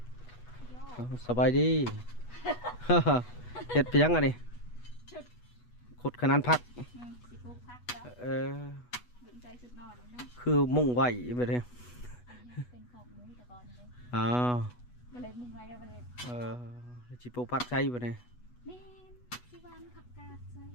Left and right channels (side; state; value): right; late; 8.2 ms